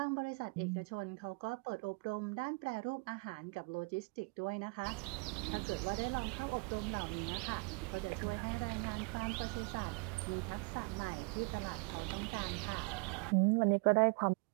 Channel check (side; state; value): left; quieter; 30.8 dB